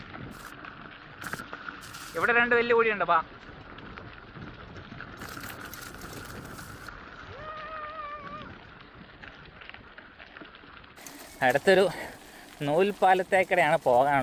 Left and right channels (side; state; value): both; identical; correlation 1.00